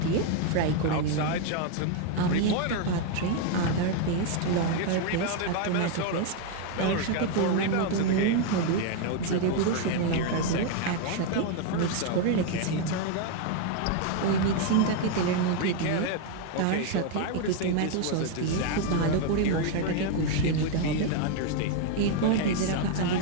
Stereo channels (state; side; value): different; both; correlation 0.01